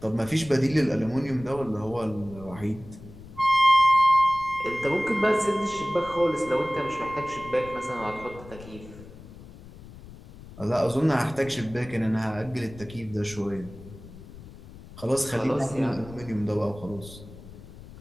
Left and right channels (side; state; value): left; noise; rumble, 17 dB below the sound